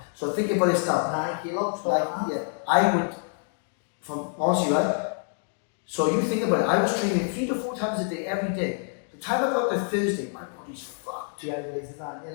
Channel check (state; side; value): silent; right; 58 dB below the other